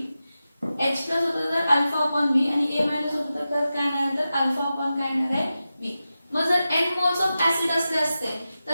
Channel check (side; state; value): both; inverted; correlation -0.93